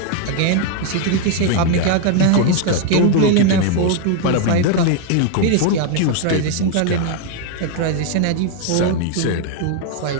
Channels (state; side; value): different; both; correlation 0.00